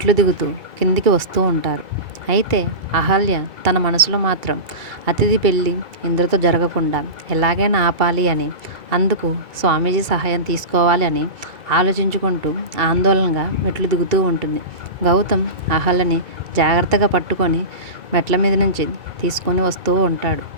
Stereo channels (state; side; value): late; left; 2.3 ms